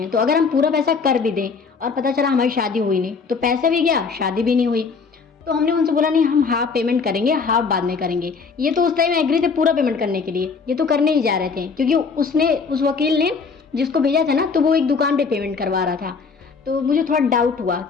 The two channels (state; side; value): quieter; right; 5.1 dB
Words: तो अगर हम पूरा पैसा कर भी दें और पता चला हमारी शादी हुई नहीं, तो पैसा भी गया, शादी भी नहीं हुई। तो हमने उनसे बोला नहीं, हम हाफ पेमेंट करेंगे, हाफ बाद में करेंगे। ये तो उस टाइम एग्री थे पूरा पेमेंट करने के लिए, ये तो करने ही जा रहे थे, क्योंकि उस वकील ने जिसको भेजा था ना, तो वो एक दुकान पे पेमेंट करवा रहा था। तो मुझे थोड़ा डाउट हुआ